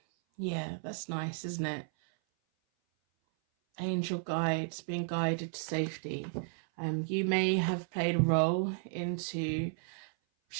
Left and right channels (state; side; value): silent; left; 55 dB below the other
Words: Yeah, that's nice, isn't it? Angel guides, being guided to safety. You may have played a role into